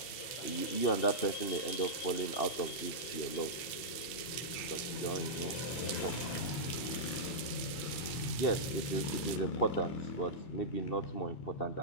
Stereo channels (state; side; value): late; right; 2.7 ms